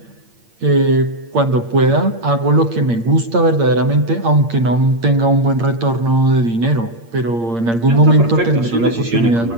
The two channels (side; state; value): left; late; 8.7 ms